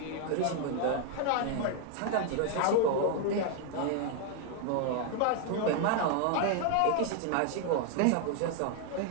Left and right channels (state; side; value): different; both; correlation 0.00